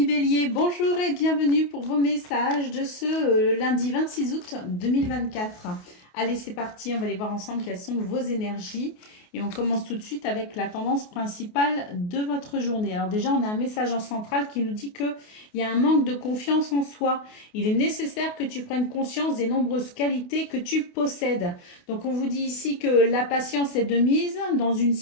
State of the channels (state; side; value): late; right; 28 ms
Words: Bélier, bonjour et bienvenue pour vos messages de ce lundi 26 août 2024. Allez, c'est parti, on va aller voir ensemble quelles sont vos énergies. Et on commence tout de suite avec la tendance principale de votre journée. Alors déjà, on a un message en centrale qui nous dit qu'il y a un manque de confiance en soi. Il est nécessaire que tu prennes conscience des nombreuses qualités que tu possèdes. Donc on vous dit ici que la patience est de mise dans une